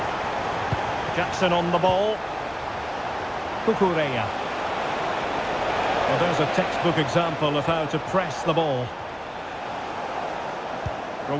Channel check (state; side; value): identical; both; correlation 1.00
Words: Jackson on the ball. Cucurella. Well, there's a textbook example of how to press the ball.